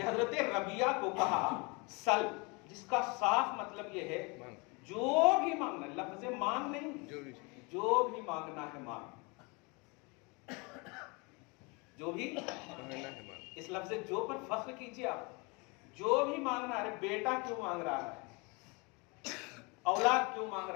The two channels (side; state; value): right; quieter; 29.2 dB